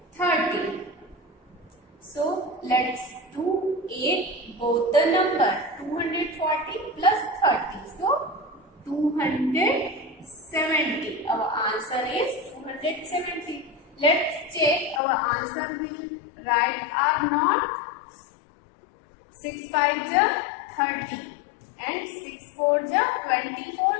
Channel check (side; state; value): right; drops out; at 15.0 s